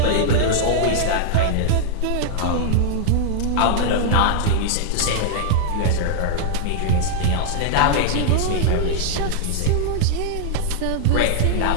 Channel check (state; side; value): different; both; correlation -0.01